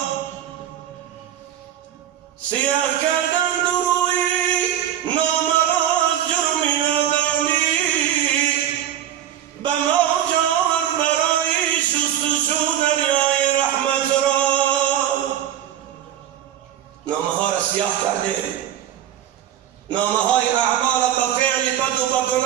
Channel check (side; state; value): left; quieter; 10.9 dB